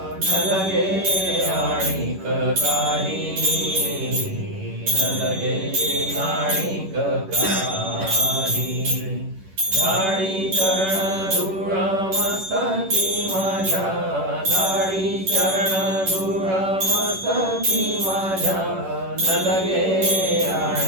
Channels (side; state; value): left; late; 11 ms